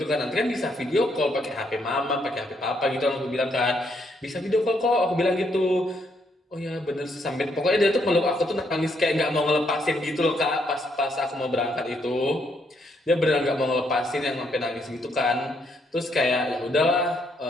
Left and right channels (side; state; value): both; normal; correlation 0.74